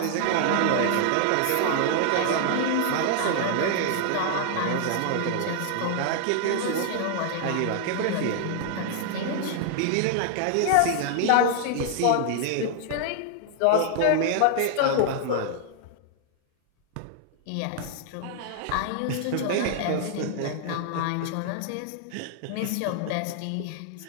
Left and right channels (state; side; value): different; both; correlation -0.01